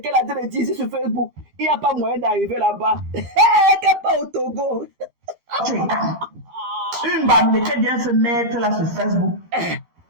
a dit ici sur Facebook. Il n'y a pas moyen d'arriver là-bas. Qu'elle pas au Togo. Une bamileke vient se mettre là sur Facebook.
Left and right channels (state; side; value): late; left; 12 ms